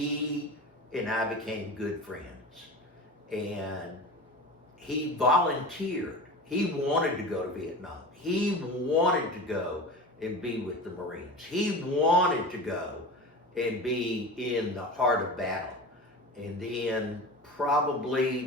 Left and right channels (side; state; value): both; normal; correlation 0.32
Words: and I became good friends. And he volunteered. He wanted to go to Vietnam. He wanted to go and be with the Marines. He wanted to go and be in the heart of battle. And then probably